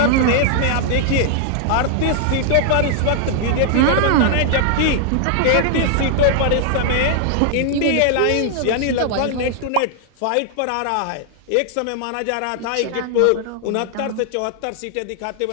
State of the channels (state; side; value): different; both; correlation 0.00